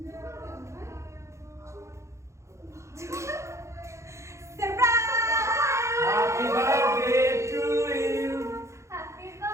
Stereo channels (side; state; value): left; late; 0.14 ms